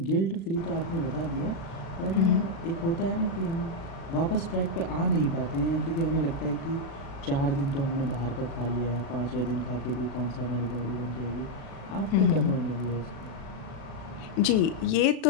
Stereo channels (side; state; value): right; late; 36 ms